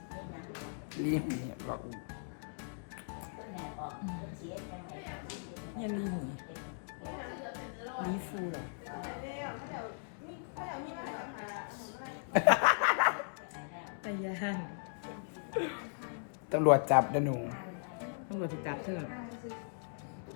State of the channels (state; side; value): silent; right; digital silence